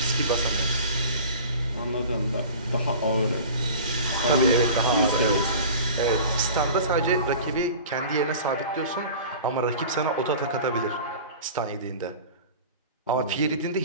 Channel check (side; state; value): both; inverted; correlation -0.39